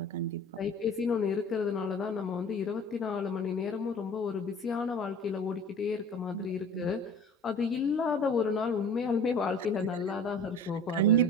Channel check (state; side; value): normal; both; correlation 0.42